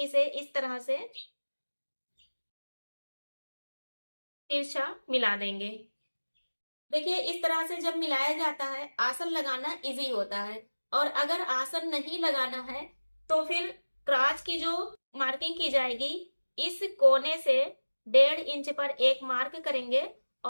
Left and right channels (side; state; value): both; inverted; correlation -1.00